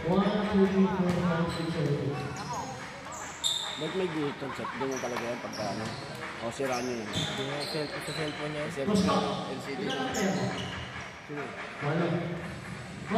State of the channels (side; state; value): both; identical; correlation 1.00